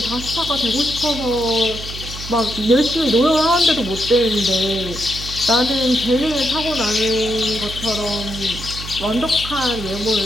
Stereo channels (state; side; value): noise; right; hum, 10 dB below the sound